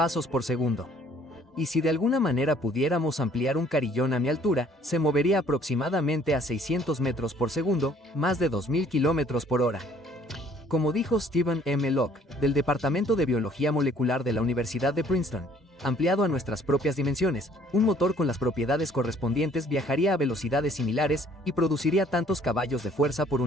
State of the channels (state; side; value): normal; both; correlation 0.59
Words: por segundo. Y si de alguna manera pudiéramos ampliar un carillón a mi altura, se movería aproximadamente a 600 metros por segundo, más de 2000 kilómetros por hora. Como dijo Stephen M. Locke, del Departamento de Biología Molecular de la Universidad de Princeton, ampliado a nuestras propias dimensiones, un motor con las propiedades correspondientes viajaría a velocidades similares y produciría tantos caballos de fuerza por